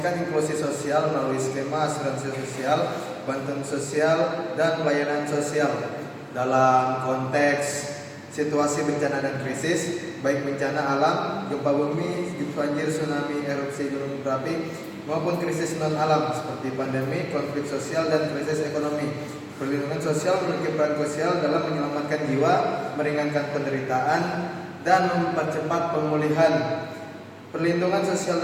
inklusi sosial melalui skema asuransi sosial, bantuan sosial, dan pelayanan sosial dalam konteks situasi bencana dan krisis, baik bencana alam, gempa bumi, banjir, tsunami, erupsi gunung berapi, maupun krisis non-alam seperti pandemi, konflik sosial, dan krisis ekonomi. Perlindungan sosial memiliki peran krusial dalam menyelamatkan jiwa, meringankan penderitaan, dan mempercepat pemulihan. Perlindungan sosial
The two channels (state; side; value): identical; both; correlation 1.00